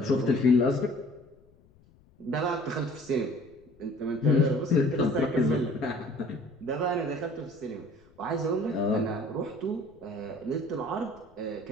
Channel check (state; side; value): noise; left; rumble, 29 dB below the sound